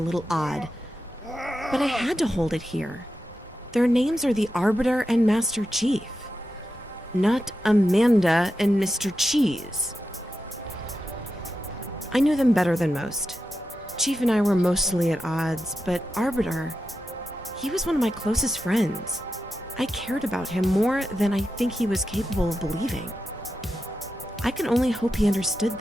odd, but I had to hold it here. Their names are the Arbiter and Master Chief, not Amanda and Mr. Cheese. I knew them better than most. Chief and I were mostly at odds, but Arbiter, he was one of my closest friends. I cared about him more than I think he was capable of believing. I can only hope he understood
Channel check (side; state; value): both; normal; correlation 0.89